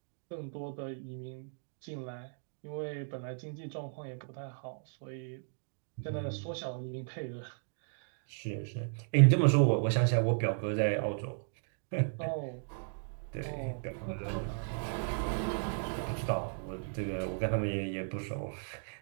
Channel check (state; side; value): silent; left; digital silence